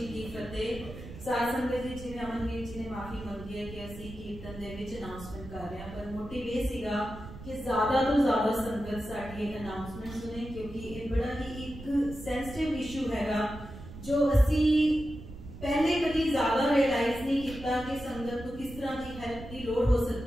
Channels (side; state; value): right; noise; rumble, 13 dB below the sound